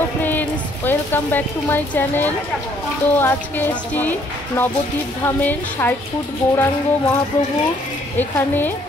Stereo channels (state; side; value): normal; both; correlation 0.64